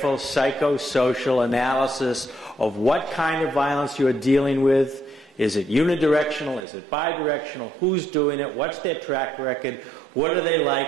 psychosocial analysis of what kind of violence you're dealing with. Is it unidirectional? Is it bidirectional? Who's doing it? What's their track record? What are they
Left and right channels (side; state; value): left; drops out; at 6.6 s